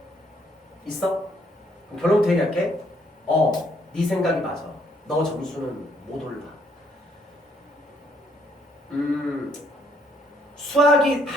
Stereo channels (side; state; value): both; normal; correlation 0.68